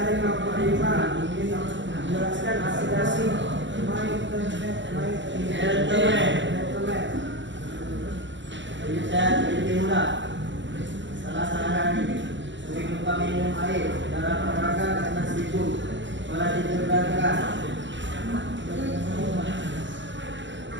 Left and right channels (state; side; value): late; left; 0.54 ms